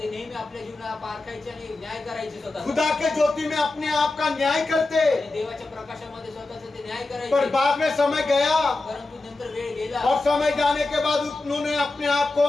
नेहमी आपल्या जीवनाला पारखायचे आणि न्याय करायचे स्वतः, खुदा के ज्योति में अपने आप का न्याय करते। आणि देवाच्या प्रकाशामध्ये स्वतःचं ते न्याय पर करायचे। बाद में समय गया परंतु नंतर वेळ गेला और समय जाने के बाद उन्होंने अपने आप को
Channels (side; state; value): right; quieter; 3.2 dB